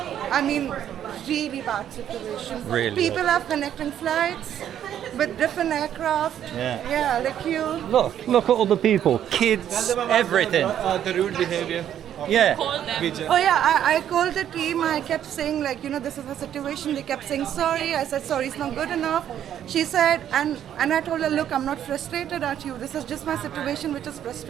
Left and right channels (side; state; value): left; quieter; 10.3 dB